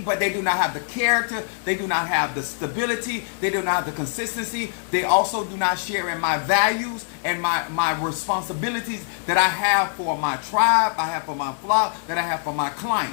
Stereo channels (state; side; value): silent; right; digital silence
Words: but they do not have the character. They do not have the stability. They do not have the consistency. They also do not share in my values and my responsibilities that I have for my tribe, I have for my flock, that I have for my